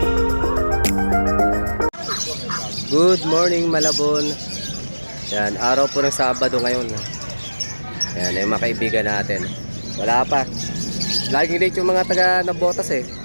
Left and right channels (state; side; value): inverted; both; correlation -1.00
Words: Good morning Malabon. Yan, araw po ng Sabado ngayon. Yan, yung mga kaibigan natin. Wala pa. Laging late yung mga taga Nabotas eh.